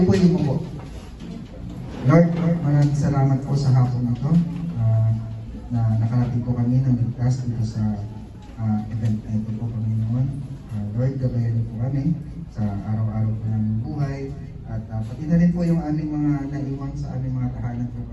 po yung po. Lord, maraming salamat po sa hapon na ito na nakarating po kami ng ligtas dito sa event na ito po, Panginoon. Lord, gabayan niyo po kami sa araw-araw po ng buhay at pati na rin po yung aming mga naiwang sa aming mga tahanan po,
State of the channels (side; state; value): both; identical; correlation 1.00